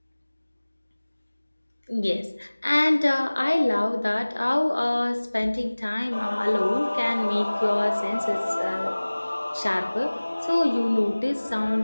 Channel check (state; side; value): inverted; both; correlation -1.00